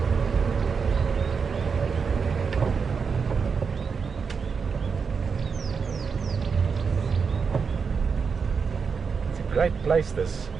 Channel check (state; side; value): quieter; left; 5.7 dB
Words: Great place this.